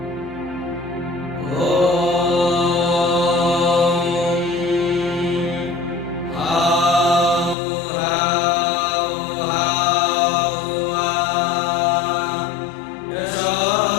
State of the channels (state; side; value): drops out; right; at 7.6 s